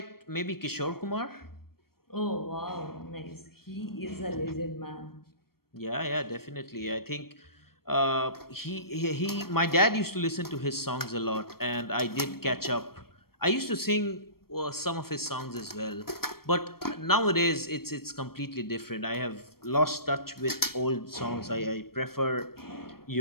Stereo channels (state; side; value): late; right; 0.94 ms